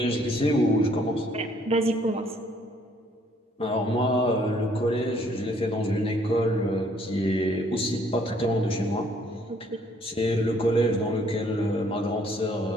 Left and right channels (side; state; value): both; normal; correlation 0.64